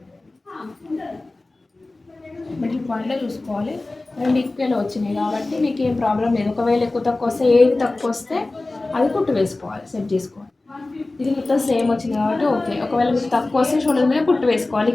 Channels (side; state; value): right; quieter; 3.1 dB